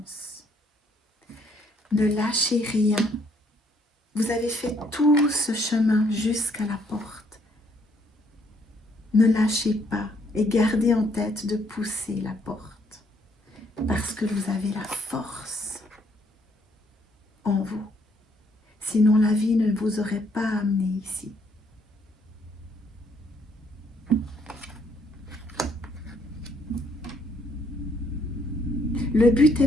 Ne lâchez rien. Vous avez fait tout ce chemin jusqu'à la porte. Ne lâchez pas et gardez en tête de pousser la porte parce que vous avez la force en vous. Sinon, la vie ne vous aurait pas amené ici. Le but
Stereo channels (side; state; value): both; normal; correlation 0.68